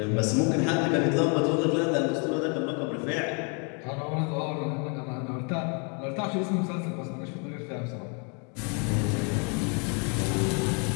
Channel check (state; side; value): quieter; right; 36.9 dB